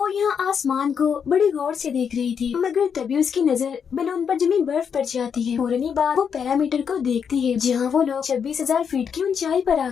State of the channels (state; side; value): quieter; right; 7.1 dB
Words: यहाँ आसमान को बड़ी गौर से देख रही थी, मगर तभी उसकी नजर बैलून पर जमी बर्फ पड़ जाती है। फौरन ही बाद वो पैरामीटर को देखती है, जहाँ वो लोग 26,000 फीट की ऊंचाई पर आ